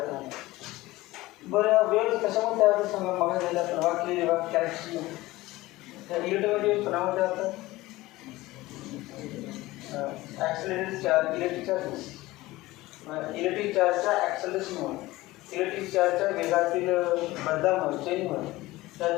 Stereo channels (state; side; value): quieter; right; 18.7 dB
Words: नाही. बरं वेव्स कशामुळे तयार होतात सांगा? मग झाल्या तर वाक्य कॅरेक्टरिस्टिक त्या इलेक्ट्रोवेव्स कोणामध्ये होतात? Accelerated charge, electric charges. Electric चार्जच्या ॲक्सलरेशनमुळे, इलेक्ट्रिक चार्जच्या वेगातील बदलामुळे, चेंजमुळे त्या